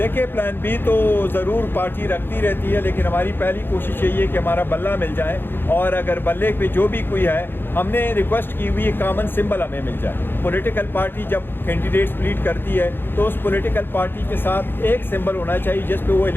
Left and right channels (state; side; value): late; right; 0.10 ms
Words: plan B तो ज़रूर पार्टी रखती रहती है, लेकिन हमारी पहली कोशिश यही है कि हमारा बल्ला मिल जाए, और अगर बल्ले पे जो भी कोई है, हमने रिक्वेस्ट की हुई कॉमन सिंबल हमें मिल जाए। पॉलिटिकल पार्टी जब कैंडिडेट स्प्लिट करती है तो उस पॉलिटिकल पार्टी के साथ एक सिंबल होना चाहिए जिस पे वो